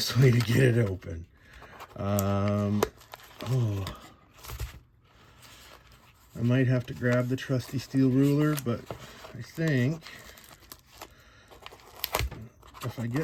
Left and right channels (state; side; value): identical; both; correlation 1.00